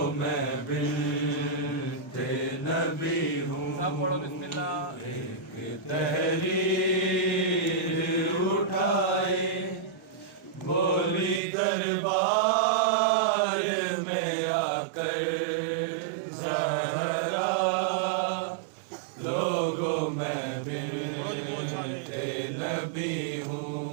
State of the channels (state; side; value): drops out; left; at 11.4 s